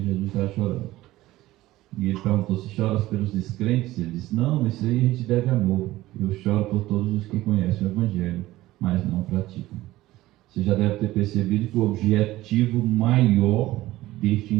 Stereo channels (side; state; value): left; quieter; 16.8 dB